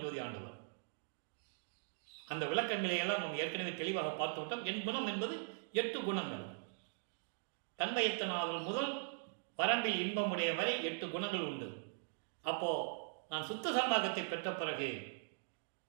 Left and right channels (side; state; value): left; silent; digital silence